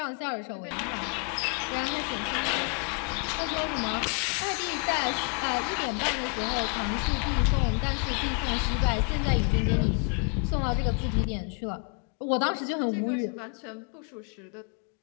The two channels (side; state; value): right; quieter; 38.2 dB